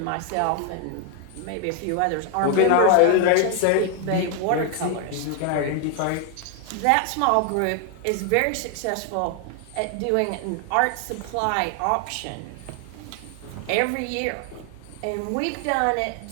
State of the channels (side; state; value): both; different; correlation 0.00